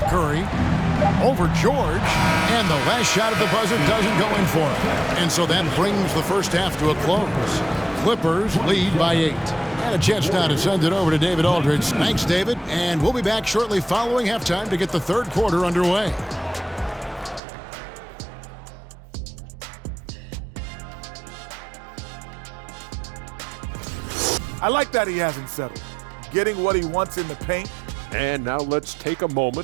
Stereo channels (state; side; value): drops out; left; at 17.4 s